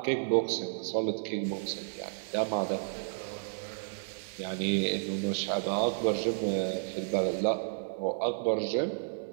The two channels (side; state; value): left; silent; digital silence